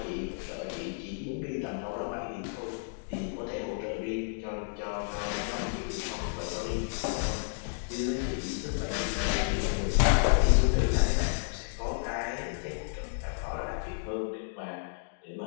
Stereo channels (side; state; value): right; silent; digital silence